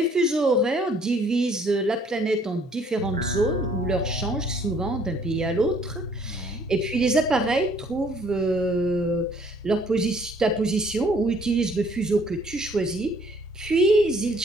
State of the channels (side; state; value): both; normal; correlation 0.61